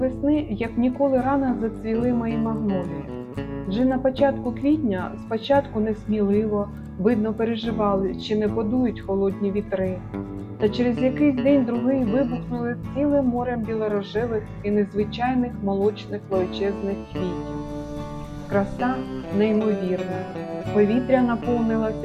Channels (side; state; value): both; identical; correlation 1.00